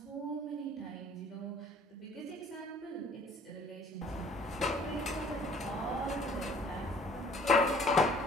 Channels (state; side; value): normal; both; correlation 0.54